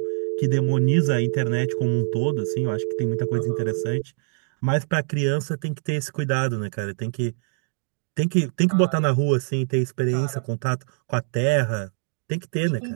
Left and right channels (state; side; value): silent; left; digital silence